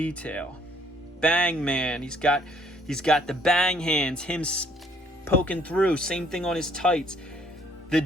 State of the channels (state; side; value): normal; both; correlation 0.63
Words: Bang Man. He's got the bang hands. Him poking through. Same thing on his tights. The